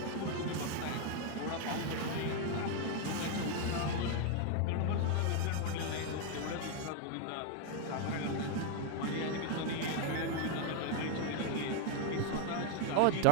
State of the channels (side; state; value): both; different; correlation 0.01